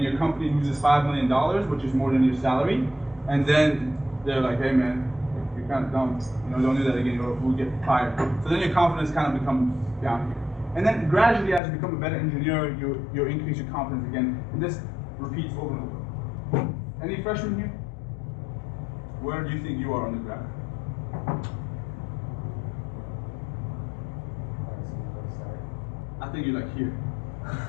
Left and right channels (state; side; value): drops out; right; at 11.6 s